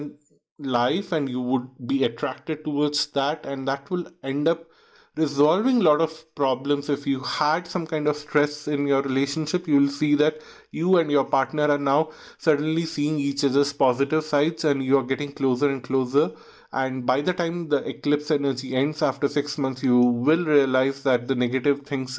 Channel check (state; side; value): identical; both; correlation 1.00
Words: life, and you would be attracted towards that, and that will end up resolving a lot of problems. If you had some kind of stress in your relationship, you will see that you and your partner are now suddenly seeing each other's positive sides, and you are getting closer and closer. And by the time the eclipse energy ends after 6 months, you will realize that the negative things